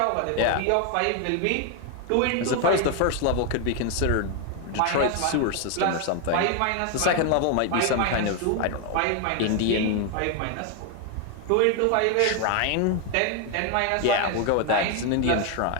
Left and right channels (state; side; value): different; both; correlation 0.01